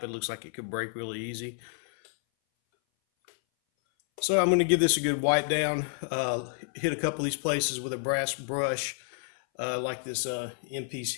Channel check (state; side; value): silent; right; 58 dB below the other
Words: It looks like it could break really easy. So I'm going to give this a good wipe down, hit a couple of these places with a brass brush, like this end piece